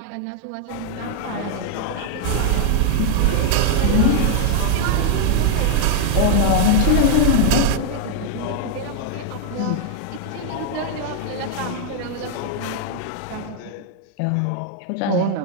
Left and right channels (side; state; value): both; different; correlation 0.00